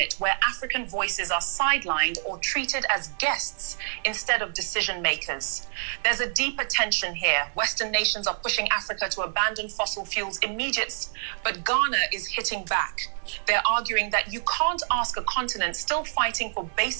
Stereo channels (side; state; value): left; silent; digital silence